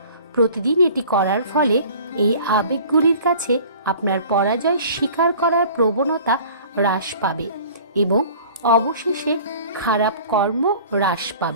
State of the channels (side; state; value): both; inverted; correlation -0.46